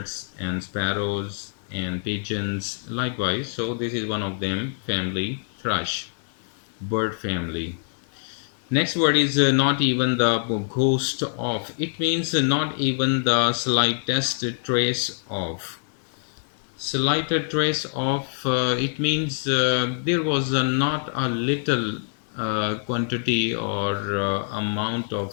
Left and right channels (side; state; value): right; silent; 62 dB below the other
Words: and sparrows and pigeons likewise. So this is one of them, family thrush, bird family. Next word is not even the ghost of. It means not even the slightest trace of. Slighted trace of, it means there was not a little quantity or amount of